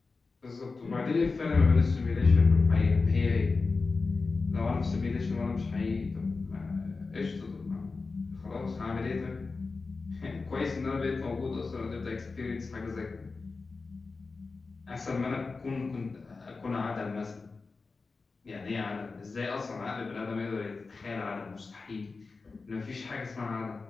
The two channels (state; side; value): quieter; right; 4.1 dB